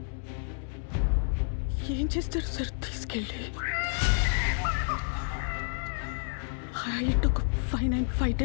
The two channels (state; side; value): silent; right; digital silence